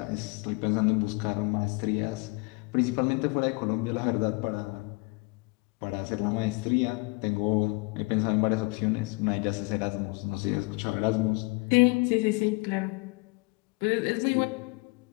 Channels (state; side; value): quieter; right; 27.2 dB